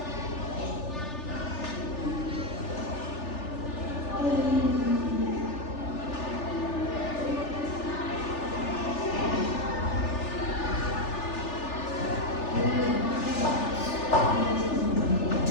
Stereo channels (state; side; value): late; right; 3.4 ms